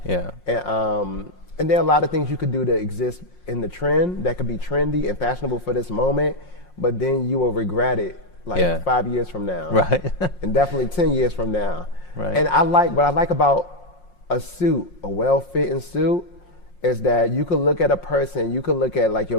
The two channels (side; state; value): right; late; 5.6 ms